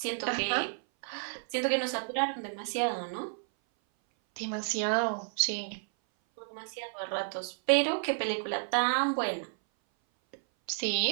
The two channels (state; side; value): silent; left; 57 dB below the other